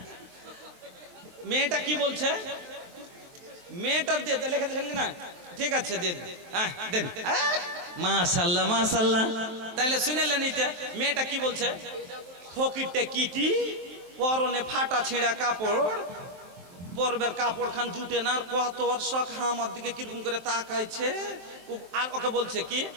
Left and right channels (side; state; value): left; late; 23 ms